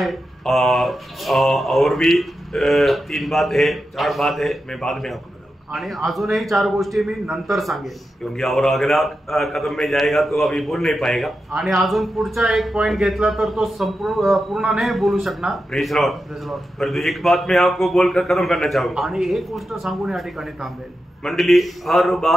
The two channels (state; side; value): normal; both; correlation 0.89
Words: और भी 3 बात है 4 बात है. मैं बाद में आपको बताऊंगा. आणि अजूनही 4 गोष्टी मी नंतर सांगेन. क्योंकि और अगला कदम में जाएगा तो अभी बोल नहीं पाएगा. आणि अजून पुढचा एक पॉइंट घेतला तर तो पूर्ण नाही बोलू शकणार. Praise Lord. परंतु एक बात मैं आपको बोलकर खत्म करना चाहूंगा. आणि एक गोष्ट सांगून या ठिकाणी थांबेल. मंडली हर